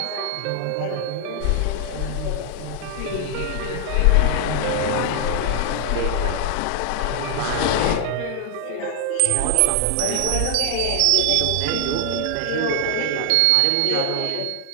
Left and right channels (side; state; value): both; different; correlation 0.00